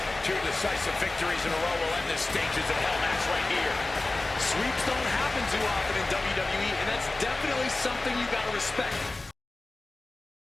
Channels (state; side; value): quieter; right; 3.1 dB